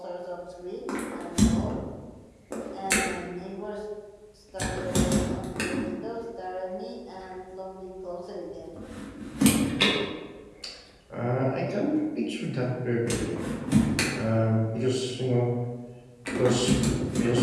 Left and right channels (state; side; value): identical; both; correlation 1.00